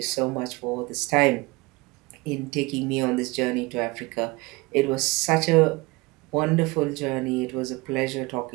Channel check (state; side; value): quieter; left; 24.1 dB